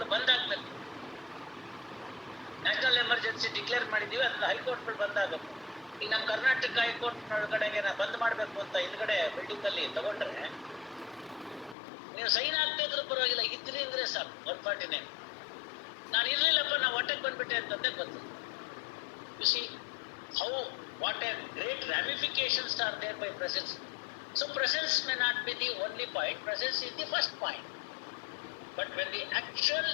ಬಂದಾಗ್ಬೇಕು. ನ್ಯಾಷನಲ್ ಎಮರ್ಜೆನ್ಸಿ ಡಿಕ್ಲೇರ್ ಮಾಡಿದೀವಿ, ಅದ್ರ ಹೈಕೋರ್ಟ್ಗಳು ಬಂದಾಗಬೇಕು. ಈಗ ನಮ್ಮ ಕರ್ನಾಟಕ ಹೈಕೋರ್ಟ್ ಒಳಗಡೆಗೆ ಬಂದ್ ಮಾಡ್ಬೇಕು ಅಂತ ಹಿಂದ್ಗಡೆ ಬಿಲ್ಡಿಂಗ್ ಅಲ್ಲಿ ತಗೊಂಡ್ರೆ ನೀವು ಸೈನ್ ಆಗ್ತಾ ಇದ್ರು ಪರವಾಗಿಲ್ಲ, ಇದ್ರಿ ಅಂದ್ರೆ ಸಾಕು 149. ನಾನು ಇರ್ಲಿಲ್ಲಪ್ಪ, ನಾ ಹೊಟ್ಟೆಗೆ ಬಂದ್ಬಿಟ್ಟೆ ಅಂತಂದೇ ಗೊತ್ತು. U C how what a great ramifications are there by presence. So presence may not be the only point, presence is the first point. But when the actual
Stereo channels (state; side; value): drops out; right; at 11.8 s